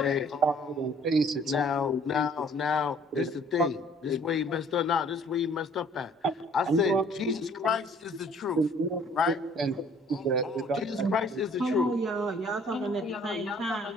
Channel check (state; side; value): normal; both; correlation 0.57